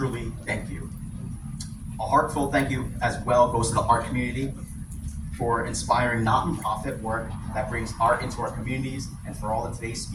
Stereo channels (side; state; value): both; identical; correlation 1.00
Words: thank you. A heartfelt thank you as well goes to the art community for inspiring not-for-profit work that brings art into our communities, and for all of today's